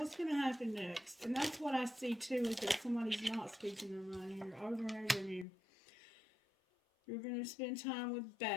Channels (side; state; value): right; drops out; at 5.5 s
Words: going to happen next? And that's what I see too, is that somebody's not speaking their mind here over and over again. You're going to spend time with